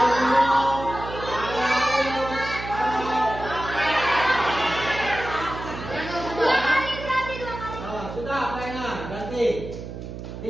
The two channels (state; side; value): noise; right; hum, 9 dB below the sound